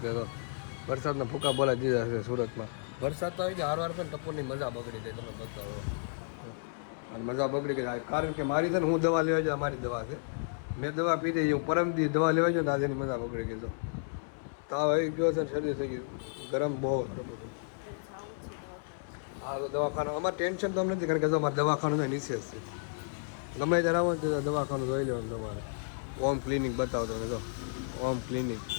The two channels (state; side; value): silent; right; 56 dB below the other